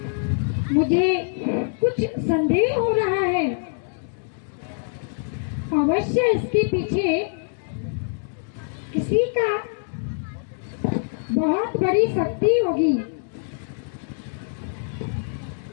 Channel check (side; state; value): right; silent; digital silence